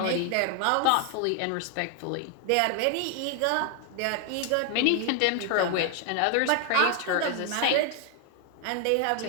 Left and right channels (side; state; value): both; different; correlation 0.00